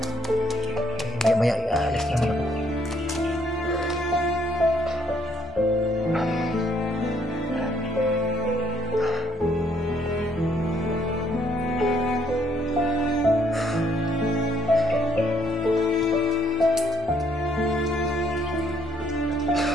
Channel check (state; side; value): normal; both; correlation 0.67